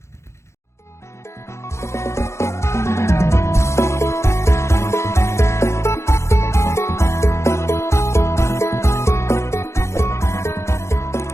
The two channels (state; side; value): late; right; 0.13 ms